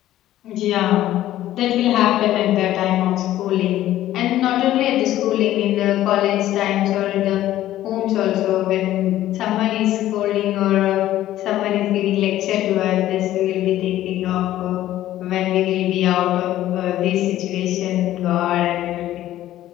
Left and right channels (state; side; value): quieter; right; 13.7 dB